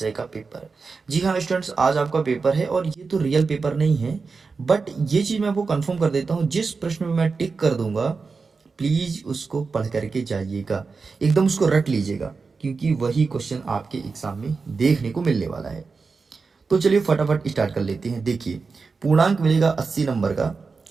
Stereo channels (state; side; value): quieter; left; 4.6 dB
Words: का पेपर। जी हाँ स्टूडेंट्स, आज आपका पेपर है और ये तो रियल पेपर नहीं है, बट ये चीज़ मैं आपको कंफर्म कर देता हूँ, जिस प्रश्न में मैं टिक कर दूंगा प्लीज़ उसको पढ़ करके जाइएगा, एकदम उसको रट लीजिएगा, क्योंकि वही क्वेश्चन आपके एग्जाम में देखने को मिलने वाला है। तो चलिए फटाफट स्टार्ट कर लेते हैं। देखिए, पूर्णांक मिलेगा 80 नंबर का